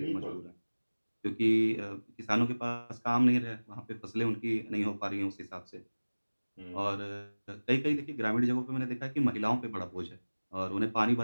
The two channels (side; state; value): both; inverted; correlation -1.00